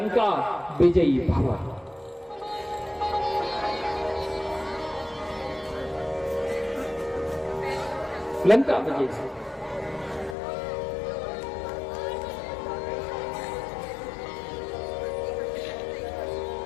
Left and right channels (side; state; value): right; drops out; at 10.4 s